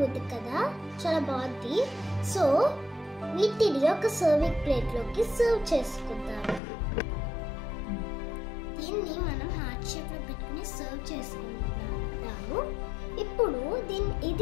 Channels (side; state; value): right; drops out; at 6.6 s